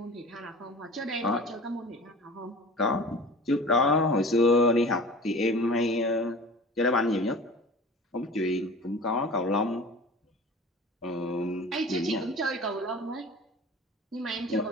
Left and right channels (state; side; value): normal; both; correlation 0.40